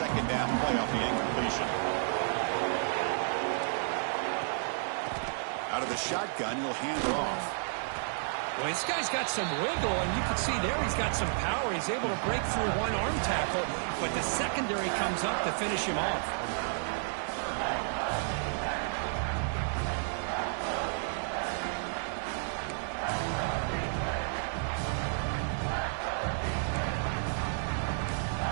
down play off the incompletion. Out of the shotgun, he'll hand it off. Well, this guy's got some wiggle, and you can see there he's got some power. He's able to break through one arm tackle, but the secondary comes up to finish him off.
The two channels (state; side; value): silent; left; digital silence